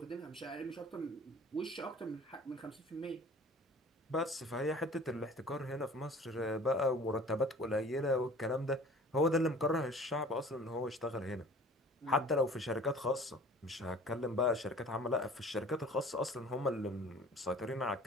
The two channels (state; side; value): normal; both; correlation 0.46